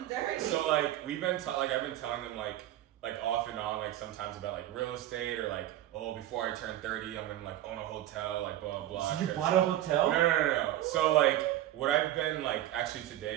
Dirty. So like we've been I've been telling them like off and on like sometimes about like real estate or like before I turn 30 I'm gonna like own a hotel like blah blah blah. You bought a hotel? No. So like what I've been like actually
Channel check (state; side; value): quieter; left; 13.6 dB